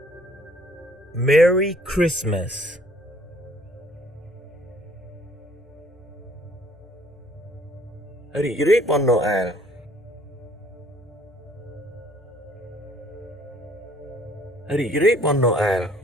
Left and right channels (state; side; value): normal; both; correlation 0.59